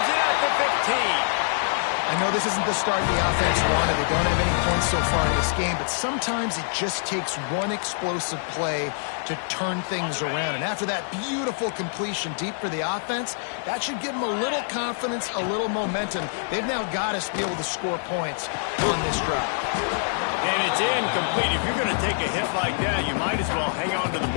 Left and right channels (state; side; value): silent; right; digital silence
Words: it at the 15. I know this isn't the start the offense wanted. They don't have any points so far in this game, but sometimes it just takes one explosive play to turn things around. And after that beautiful completion deep for the offense, that should give them a little confidence, a little momentum. They've now got us to be able to score points on this drive. And it's incomplete. If you're going to take a hit like that, you might as well hang on to the